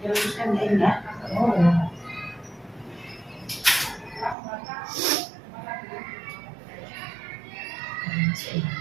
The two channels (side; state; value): left; drops out; at 4.4 s